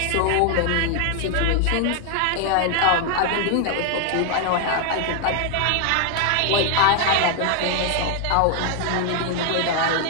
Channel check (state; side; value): different; both; correlation 0.00